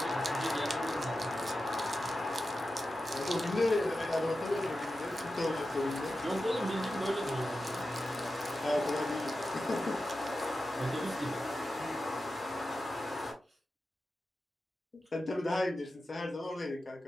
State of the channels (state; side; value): normal; both; correlation 0.92